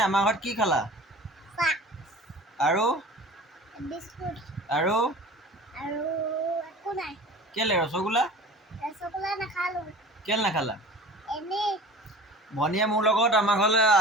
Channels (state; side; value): normal; both; correlation 0.40